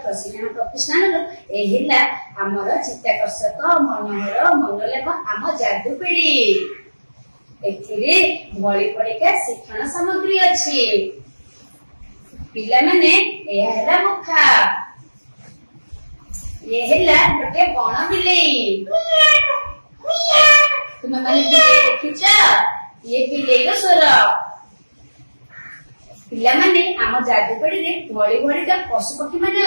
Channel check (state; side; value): inverted; both; correlation -1.00